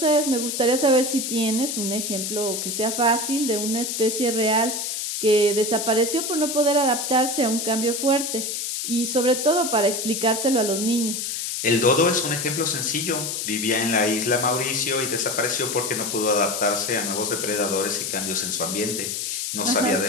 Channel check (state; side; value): noise; left; hiss, 3 dB below the sound